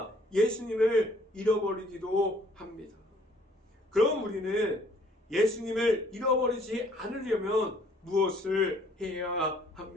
예수님을 잃어버리기도 합니다. 그럼 우리는 예수님을 잃어버리지 않으려면 무엇을 해야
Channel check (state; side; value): normal; both; correlation 0.60